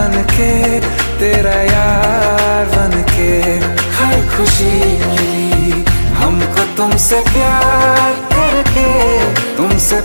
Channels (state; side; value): inverted; both; correlation -1.00